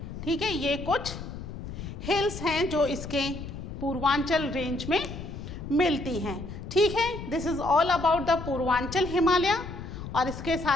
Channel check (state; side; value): noise; left; rumble, 9 dB below the sound